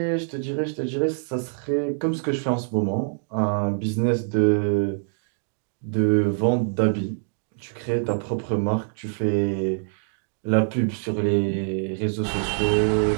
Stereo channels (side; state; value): left; silent; 62 dB below the other